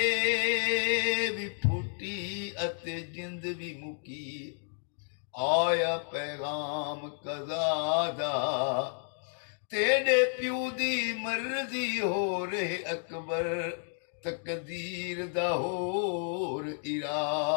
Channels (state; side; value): silent; right; 57 dB below the other